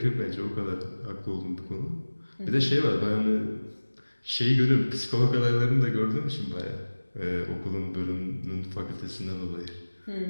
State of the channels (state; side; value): inverted; both; correlation -1.00